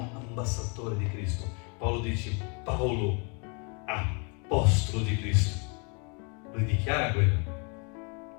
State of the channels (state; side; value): quieter; right; 35.2 dB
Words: ambasciatori di Cristo. Paolo dice, Paolo, apostolo di Cristo. Lui dichiara quello.